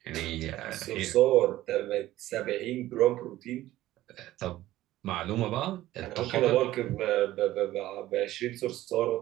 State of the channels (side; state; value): left; quieter; 15.4 dB